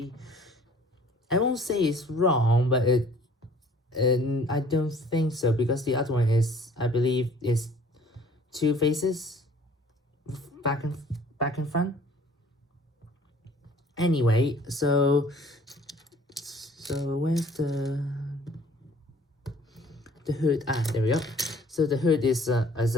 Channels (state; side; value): normal; both; correlation 0.54